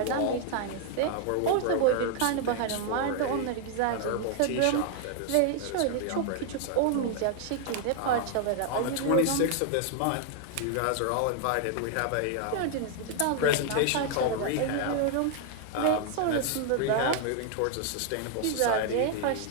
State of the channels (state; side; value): different; both; correlation 0.00